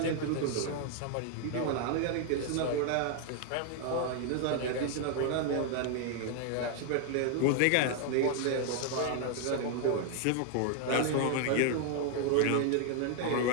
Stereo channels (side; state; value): both; different; correlation 0.00